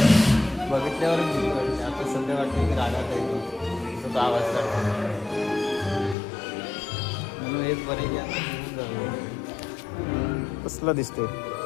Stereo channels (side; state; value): right; drops out; at 6.2 s